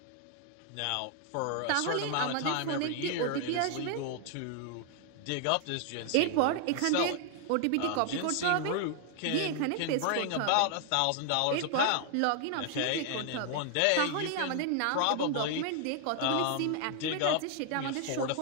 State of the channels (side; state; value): both; different; correlation 0.00